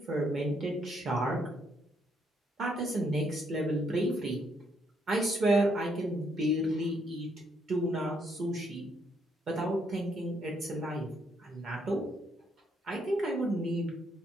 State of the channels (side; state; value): both; normal; correlation 0.73